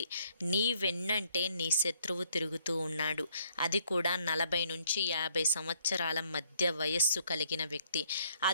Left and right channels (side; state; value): both; inverted; correlation -0.66